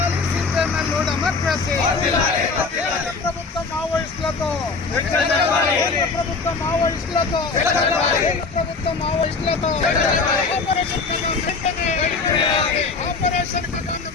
CPML democracy. ప్రభుత్వం మావోయిస్టులతో, ప్రభుత్వం మావోయిస్టులతో, ప్రభుత్వం మావోయిస్టులతో ఆపరేషన్ కగాను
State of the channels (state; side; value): quieter; right; 4.4 dB